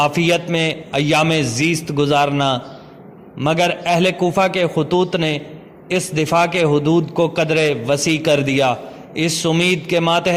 میں ایام زیست گزارنا، مگر اہل کوفہ کے خطوط نے اس دفاع کے حدود کو قدرے وسیع کر دیا، اس امید کے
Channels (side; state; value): both; identical; correlation 1.00